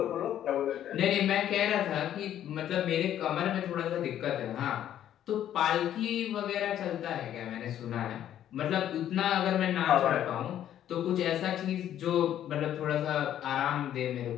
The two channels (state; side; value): quieter; right; 11.1 dB